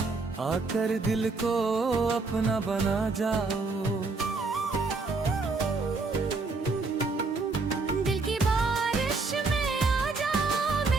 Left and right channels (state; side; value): quieter; left; 3.9 dB